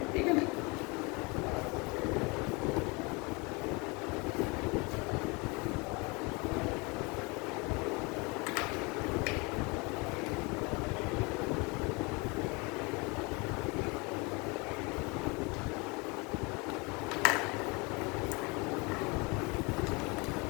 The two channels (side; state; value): right; quieter; 28.0 dB